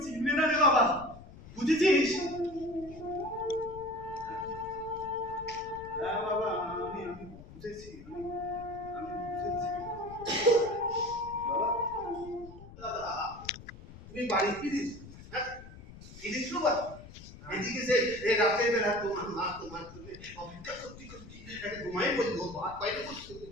চিনবে না রে বাবা, বুঝেছিস? হ্যাঁ বাবা, আমি বুঝেছি, আমি বুঝেছি বাবা। তুমি বাড়ি ফিরিস? হ্যাঁ ফিরিস তো বাবা। এদিকে যে রাতে বেলা তোমার মা তোমার জন্য অপেক্ষা করতে করতে একটা ঘুমাই বলবো, ভাত বাইরে বসতে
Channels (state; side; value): noise; left; rumble, 17 dB below the sound